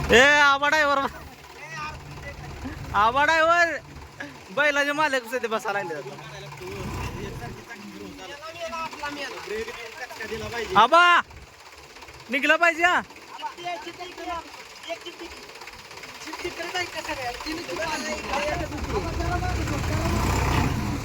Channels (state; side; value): identical; both; correlation 1.00